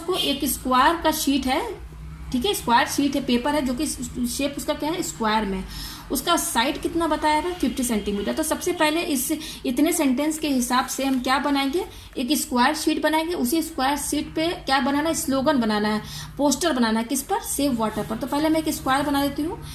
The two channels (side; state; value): both; identical; correlation 1.00